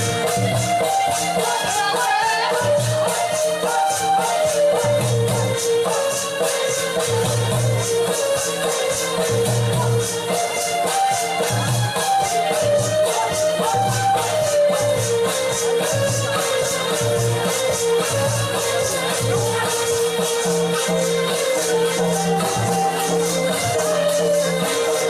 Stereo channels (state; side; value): identical; both; correlation 1.00